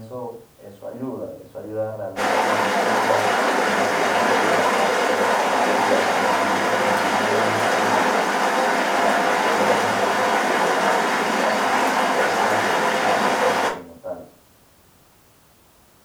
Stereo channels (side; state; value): both; identical; correlation 1.00